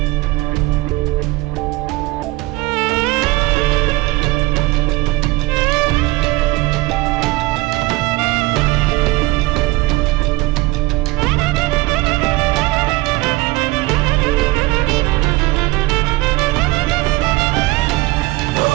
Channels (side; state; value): left; quieter; 20.6 dB